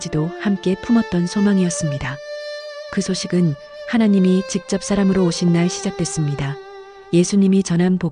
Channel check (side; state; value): both; identical; correlation 1.00